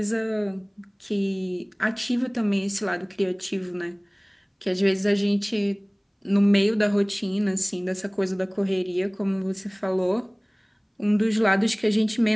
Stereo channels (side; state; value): both; identical; correlation 1.00